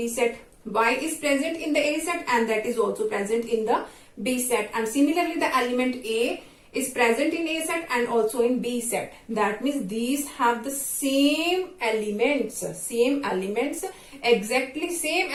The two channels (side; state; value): both; identical; correlation 1.00